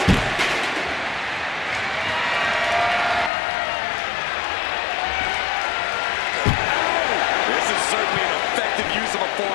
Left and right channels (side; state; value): right; drops out; at 3.3 s